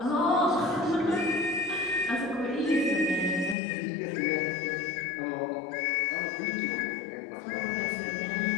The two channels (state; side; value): drops out; right; at 3.6 s